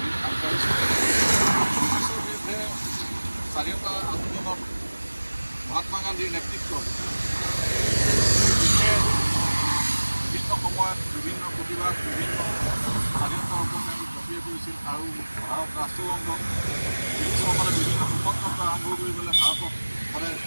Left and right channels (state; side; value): inverted; both; correlation -1.00